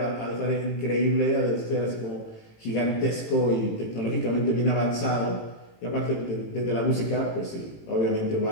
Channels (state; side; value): late; right; 18 ms